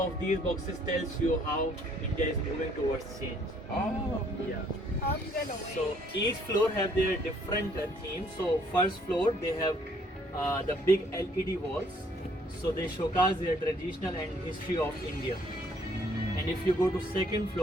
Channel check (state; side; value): normal; both; correlation 0.63